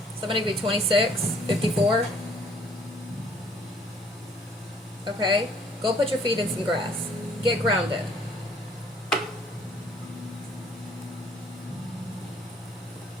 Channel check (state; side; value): normal; both; correlation 0.60